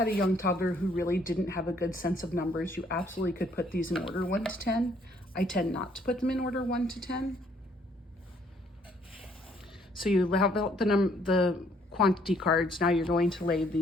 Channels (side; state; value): both; normal; correlation 0.65